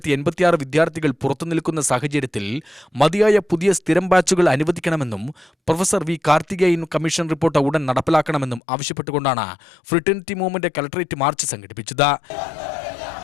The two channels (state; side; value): drops out; right; at 8.6 s